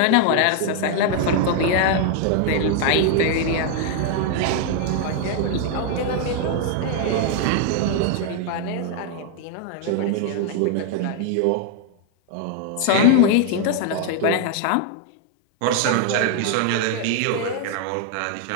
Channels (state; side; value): different; both; correlation 0.00